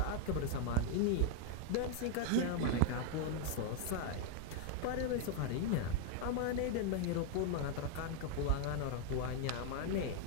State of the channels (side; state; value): both; different; correlation 0.00